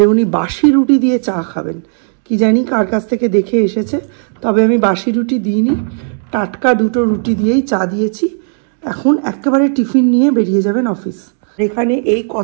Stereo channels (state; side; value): silent; left; 63 dB below the other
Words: উনি বাসি রুটি দিয়ে চা খাবেন। কি জানি কার কাছ থেকে দেখে এসেছে, তবে আমি বাসি রুটি দিইনি, টাটকা 2টো রুটি দিয়েই চা দিয়েছি। এখন একেবারে টিফিন নিয়ে বেরিয়ে যাবেন অফিস। এখানে এই